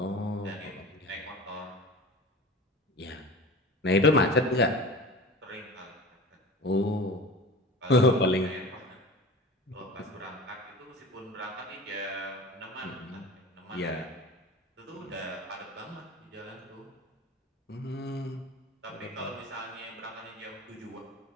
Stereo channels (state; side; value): normal; both; correlation 0.36